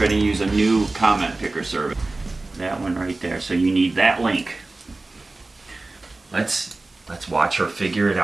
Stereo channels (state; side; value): quieter; left; 3.2 dB